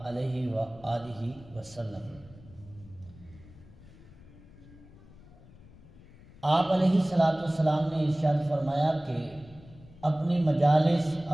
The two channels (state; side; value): noise; left; rumble, 22 dB below the sound